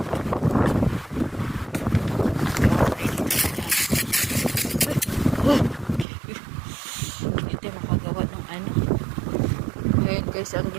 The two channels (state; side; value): drops out; left; at 6.1 s